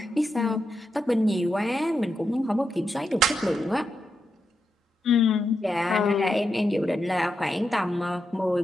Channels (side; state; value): both; normal; correlation 0.85